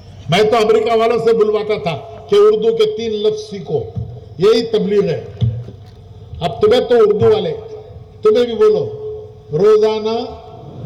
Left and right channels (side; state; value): both; identical; correlation 1.00